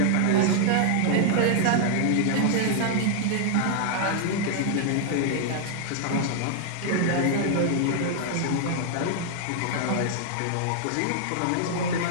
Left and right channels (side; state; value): both; different; correlation -0.01